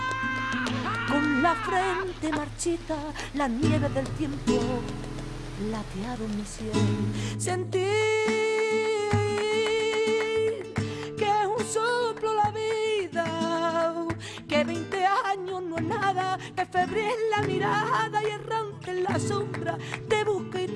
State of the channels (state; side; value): identical; both; correlation 1.00